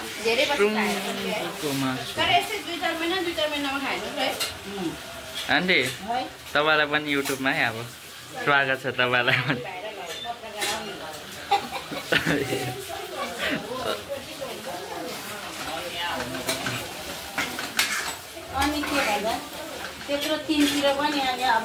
धेरै तर यस्तै 2-4 महिनामा खानु है आन्टी तपाईलाई पनि युट्युबमा है अब स्वागत छ तपाईलाई पनि अनि के भन्दा त्यत्रो 3 तिर पनि अब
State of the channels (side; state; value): both; identical; correlation 1.00